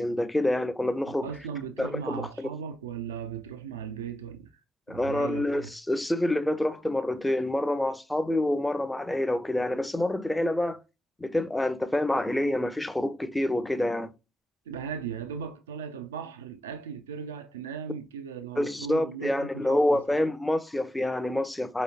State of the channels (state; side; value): normal; both; correlation 0.88